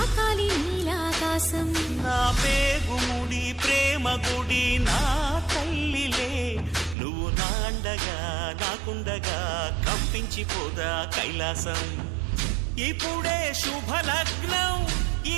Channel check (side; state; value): left; drops out; at 7.0 s